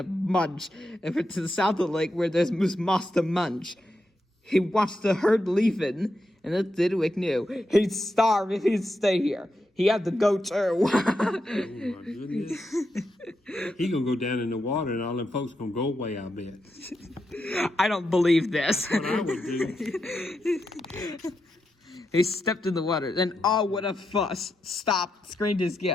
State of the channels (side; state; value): both; normal; correlation 0.85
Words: mudge over to the south of the lake where there's moose moss to munch. He watched the herd leaving, and then Thidwick knew he'd starve if he'd stay here. He had to go too. Oh my goodness. He gonna go down in the water and all them folks gonna go away, I bet. I don't believe this. That's what I would do. He stepped in the water. Then, oh, what a fuss. Stop, screamed his